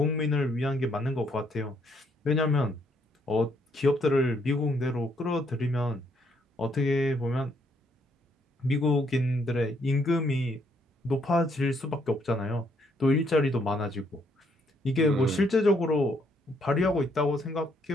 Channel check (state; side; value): normal; both; correlation 0.71